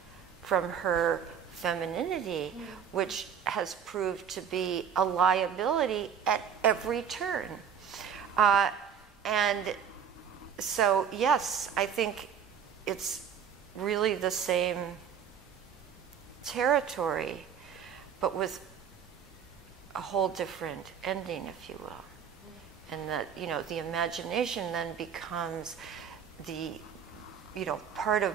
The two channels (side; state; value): left; quieter; 7.8 dB